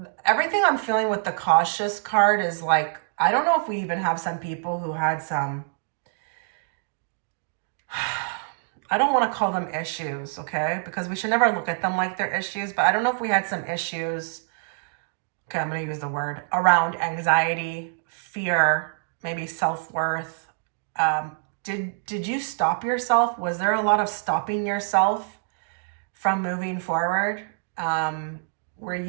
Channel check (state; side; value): silent; left; digital silence